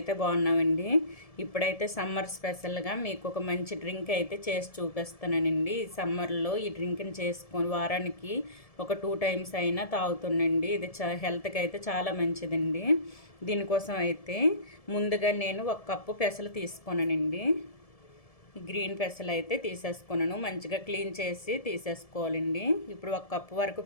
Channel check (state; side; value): late; right; 1.7 ms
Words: బాగున్నామండి. ఇప్పుడైతే సమ్మర్ స్పెషల్గా మీకు ఒక మంచి డ్రింక్ అయితే చేసి చూపిస్తానండి. ఈ సమ్మర్లో ఈ డ్రింక్ని చేసుకొని వారానికి ఒక 2 టైమ్స్ అయినా తాగుతుండండి. ఇది హెల్త్కి అయితే చాలా మంచిదండి. దీనికోసం అయితే ముందుగా నేను 1 కప్పు పెసలు తీసుకున్నానండి. గ్రీన్ పెసలు అయితే తీసేసుకున్నాను. మంచిగా క్లీన్ చేసి తీసేసుకోవాలండి. ఇప్పుడు 1 కప్పు వరకు